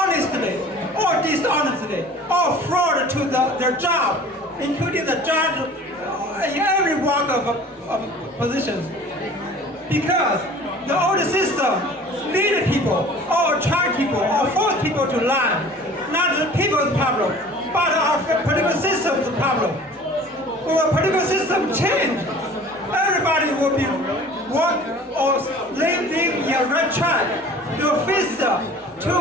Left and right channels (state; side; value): normal; both; correlation 0.46